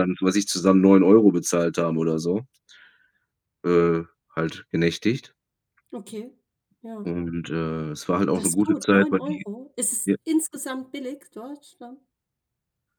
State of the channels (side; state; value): both; identical; correlation 1.00